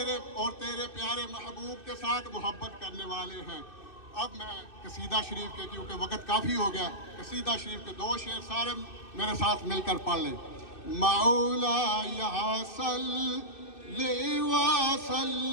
اور تیرے پیارے محبوب کے ساتھ محبت کرنے والے ہیں۔ اب میں قصیدہ شریف کے، کیونکہ وقت کافی ہو گیا، قصیدہ شریف کے 2 شعر سارے میرے ساتھ مل کر پڑھ لیں۔ مولا صلی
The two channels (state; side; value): late; right; 2.6 ms